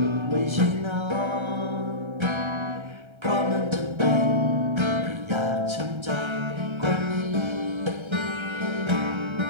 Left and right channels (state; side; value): late; left; 1.3 ms